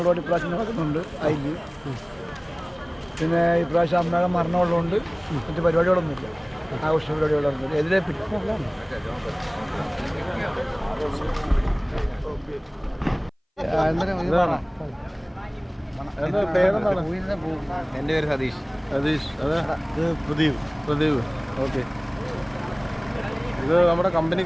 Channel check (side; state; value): both; identical; correlation 1.00